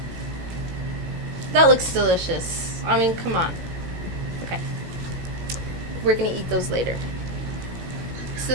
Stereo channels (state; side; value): late; left; 17 ms